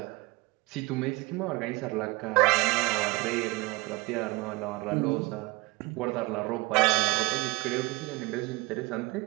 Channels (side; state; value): left; quieter; 24.4 dB